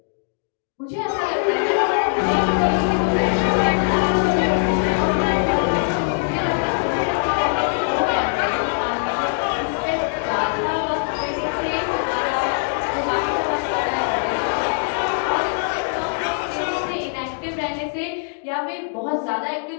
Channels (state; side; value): silent; right; digital silence